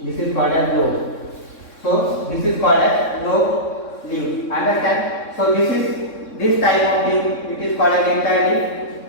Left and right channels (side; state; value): right; late; 3.6 ms